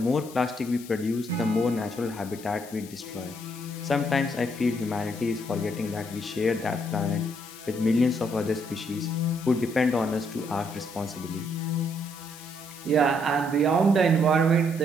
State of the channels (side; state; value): left; noise; hiss, 18 dB below the sound